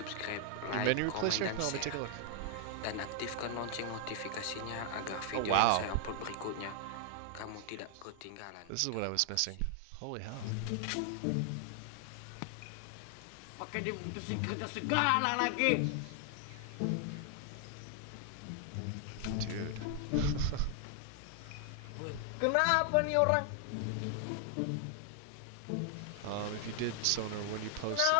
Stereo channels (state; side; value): different; both; correlation 0.00